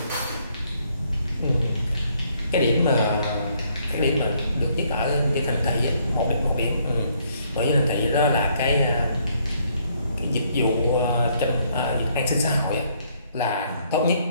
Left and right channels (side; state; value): both; inverted; correlation -0.68